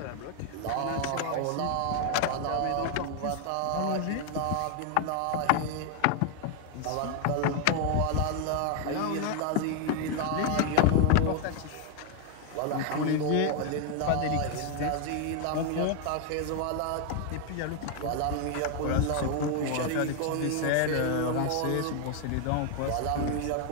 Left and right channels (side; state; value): both; different; correlation 0.00